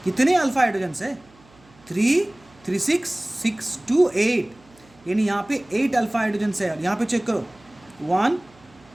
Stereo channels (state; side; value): noise; right; hum, 28 dB below the sound